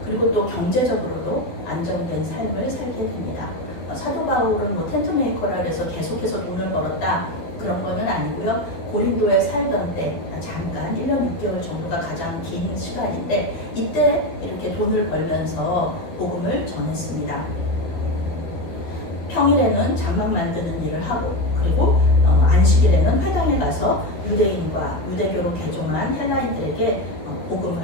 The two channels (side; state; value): right; late; 12 ms